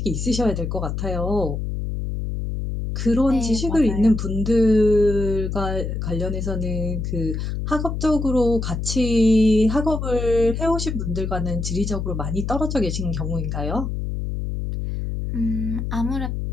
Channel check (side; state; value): left; noise; hum, 3 dB below the sound